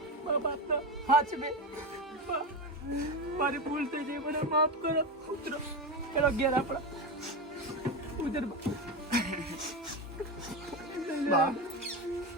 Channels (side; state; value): both; normal; correlation 0.17